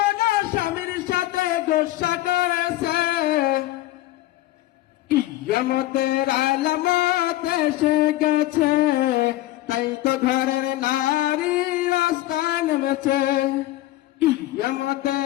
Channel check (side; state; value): right; quieter; 16.1 dB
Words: স্বামীর সাথে গোসা করেছে। কিয়ামতের আলামত এসে গেছে, তাই তো ঘরের নারী রাস্তা নেমেছে।